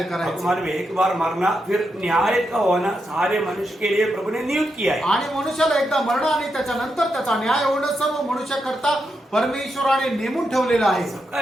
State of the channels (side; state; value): both; normal; correlation 0.84